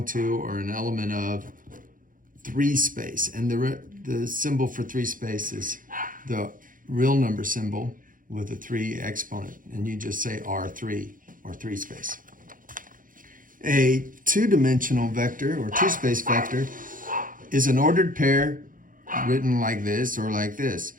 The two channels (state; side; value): late; left; 0.40 ms